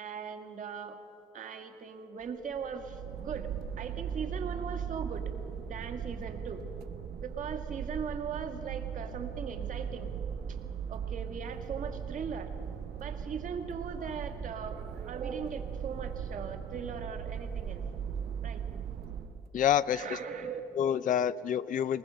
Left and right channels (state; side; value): normal; both; correlation 0.43